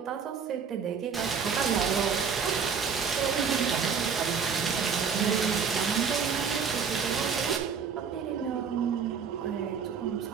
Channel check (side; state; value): left; quieter; 6.3 dB